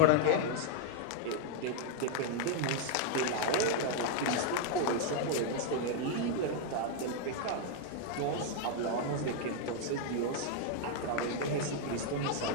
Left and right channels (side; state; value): both; different; correlation 0.00